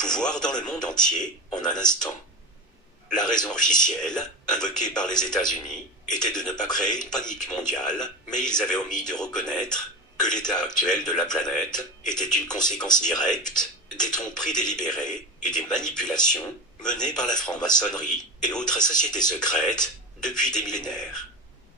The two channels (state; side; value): normal; both; correlation 0.26